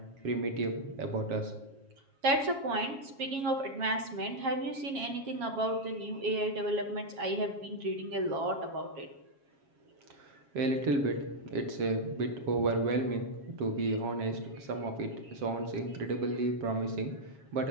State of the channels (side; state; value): left; late; 7.3 ms